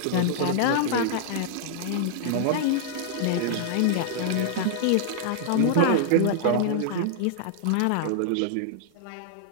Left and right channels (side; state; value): both; different; correlation -0.01